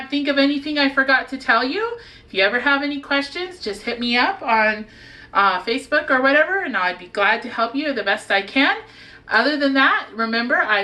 think of anything I forgot to tell you. If you ever have any questions, just hit me up on Facebook or whatever, and I'd be glad to help you the best I can. Other than that, remember, I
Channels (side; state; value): both; identical; correlation 1.00